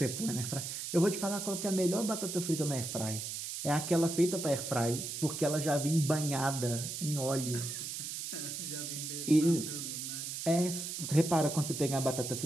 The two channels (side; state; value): right; noise; hiss, 5 dB below the sound